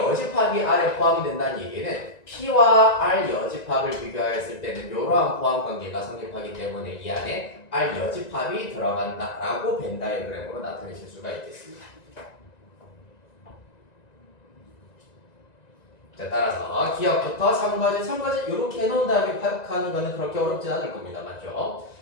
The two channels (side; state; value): right; late; 1.9 ms